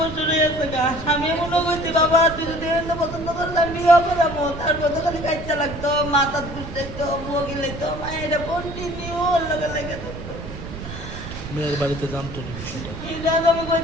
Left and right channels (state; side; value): noise; right; rumble, 10 dB below the sound